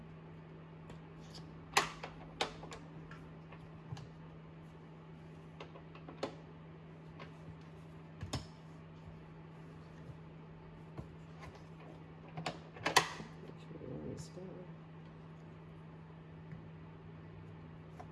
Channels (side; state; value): both; identical; correlation 1.00